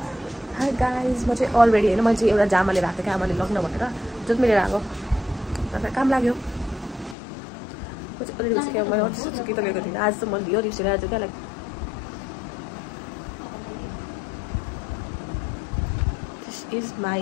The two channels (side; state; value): right; drops out; at 7.2 s